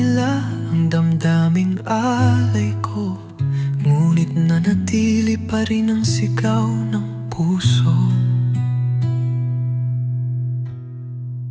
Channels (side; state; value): both; identical; correlation 1.00